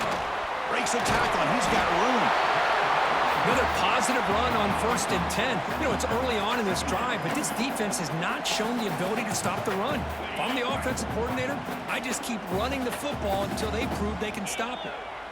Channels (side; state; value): both; identical; correlation 1.00